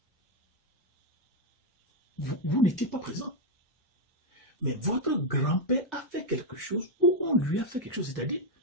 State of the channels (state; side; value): normal; both; correlation 0.02